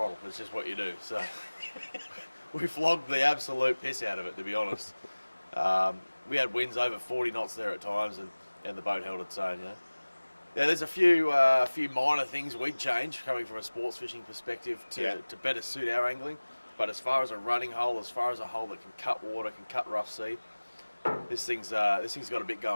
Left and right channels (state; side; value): inverted; both; correlation -1.00